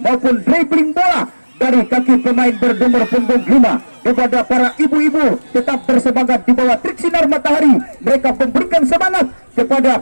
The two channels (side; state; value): both; inverted; correlation -1.00